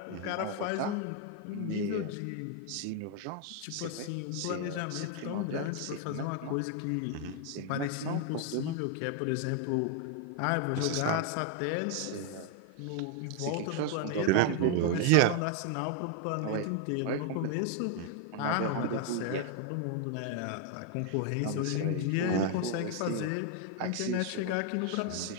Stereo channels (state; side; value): different; both; correlation 0.00